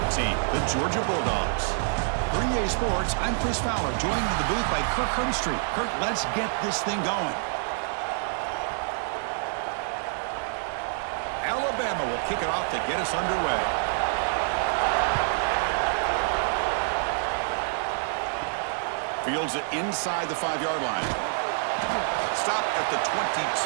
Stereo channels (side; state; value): left; silent; digital silence